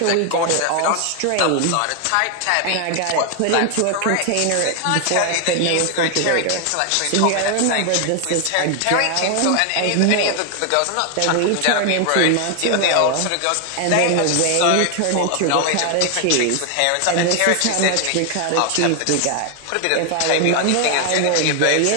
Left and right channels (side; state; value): both; different; correlation 0.00